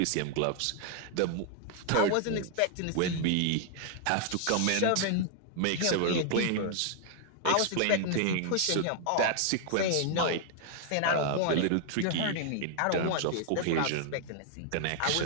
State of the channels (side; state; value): both; different; correlation 0.00